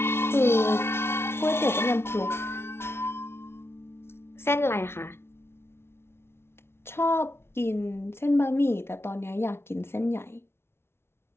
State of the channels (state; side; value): late; right; 0.12 ms